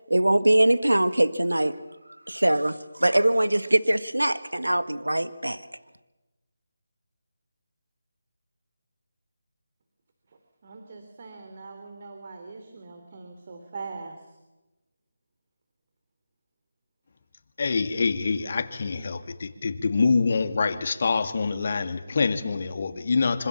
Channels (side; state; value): both; inverted; correlation -0.95